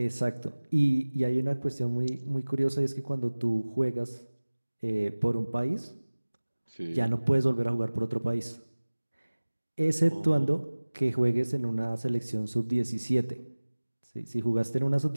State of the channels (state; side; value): inverted; both; correlation -1.00